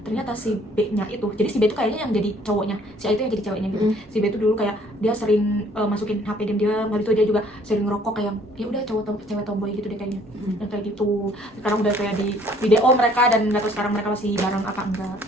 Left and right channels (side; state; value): both; normal; correlation 0.59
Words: Ternyata si B-nya itu, jadi si B itu kayaknya yang jadi cowoknya, si A itu yang jadi ceweknya gitu. Si B itu dulu kayak dia sering masukin HP dan dia, habis itu dia juga sering ngerokok, kayak ya udah cewek tomboy gitu deh kayaknya. Yang kayak gitu. Sekarang udah kayak di video mereka, dan nggak tahu sekarang mereka masih bareng apa enggak